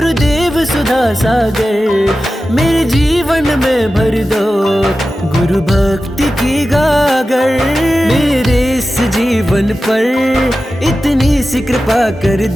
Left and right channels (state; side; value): normal; both; correlation 0.94